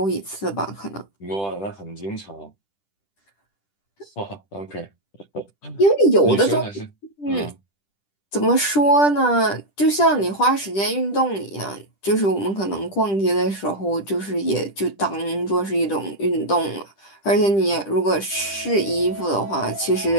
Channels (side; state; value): right; late; 10 ms